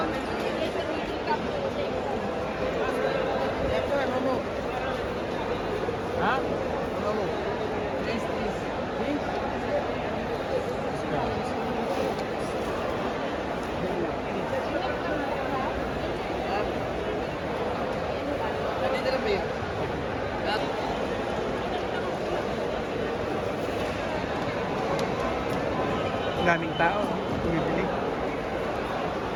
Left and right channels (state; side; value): identical; both; correlation 1.00